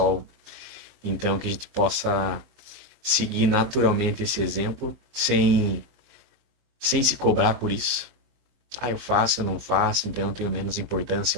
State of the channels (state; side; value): late; left; 23 ms